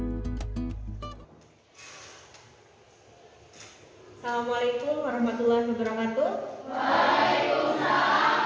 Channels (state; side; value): identical; both; correlation 1.00